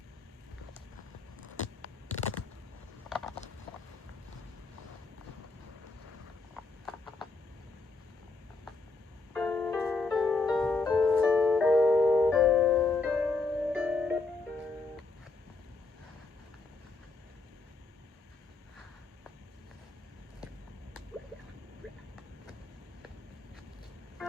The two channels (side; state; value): right; quieter; 3.7 dB